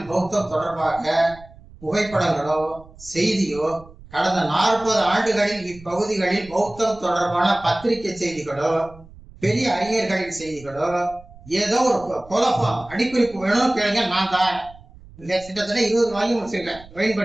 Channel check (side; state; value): right; noise; rumble, 21 dB below the sound